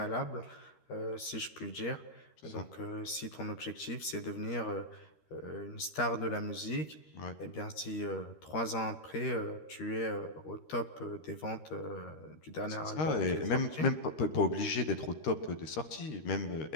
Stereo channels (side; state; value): right; late; 13 ms